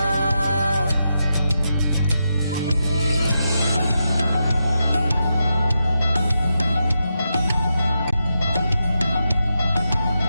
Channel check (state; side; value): inverted; both; correlation -0.86